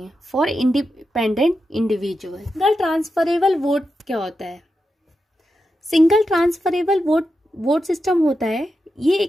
for independent individual. Single transferable vote क्या होता है? सिंगल ट्रांसफरेबल वोट सिस्टम होता है, ये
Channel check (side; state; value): both; normal; correlation 0.88